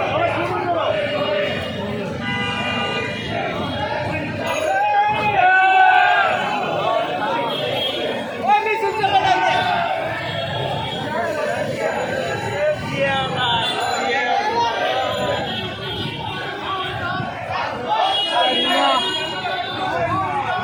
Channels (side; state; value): both; identical; correlation 1.00